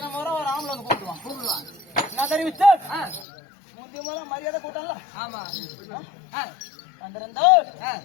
முறை ஒரு ஆம்பளை வந்து கூப்பிடுவான் என்ன தெரிவிச்சு முந்தைய முறை மரியாதை கூட்டல ஆமா வந்திருந்தோ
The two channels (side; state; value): right; drops out; at 3.2 s